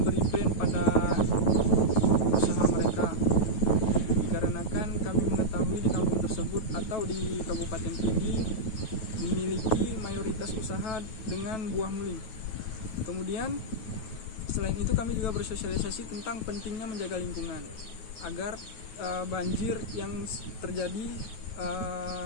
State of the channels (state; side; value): late; right; 9.2 ms